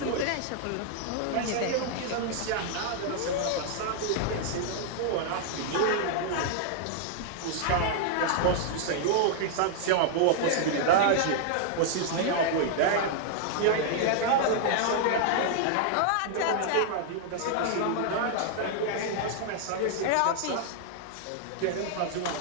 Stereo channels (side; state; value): both; different; correlation -0.01